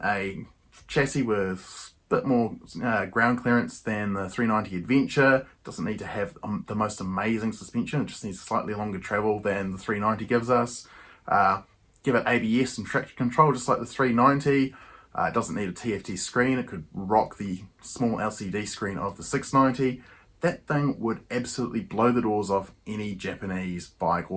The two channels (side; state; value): both; identical; correlation 1.00